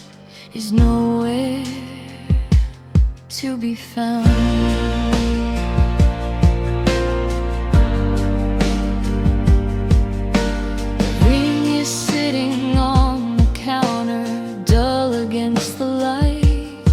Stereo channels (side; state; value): both; identical; correlation 1.00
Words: is nowhere to be found. The ring is sitting on the counter, dull against the light.